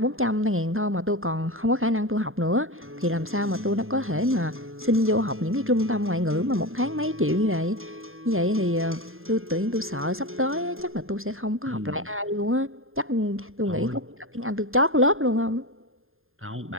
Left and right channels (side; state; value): left; late; 0.60 ms